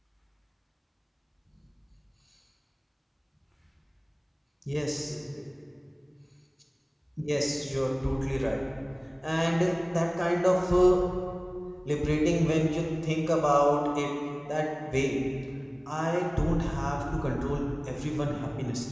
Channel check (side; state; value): both; identical; correlation 1.00